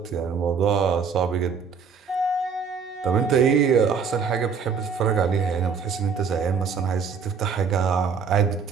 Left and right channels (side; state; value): left; quieter; 6.0 dB